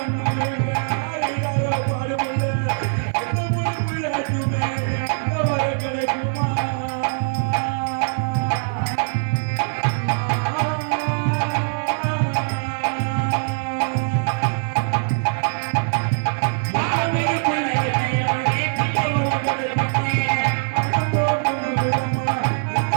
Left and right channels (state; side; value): silent; left; 58 dB below the other